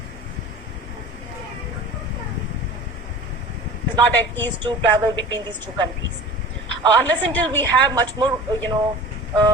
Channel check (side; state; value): both; normal; correlation 0.39